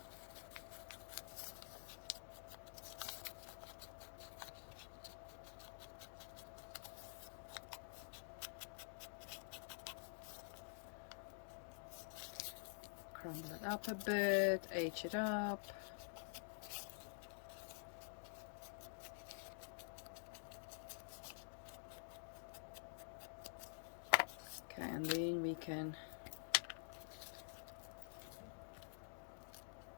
Crumble it up a bit, age it up. Okay, and then we can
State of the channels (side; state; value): right; silent; digital silence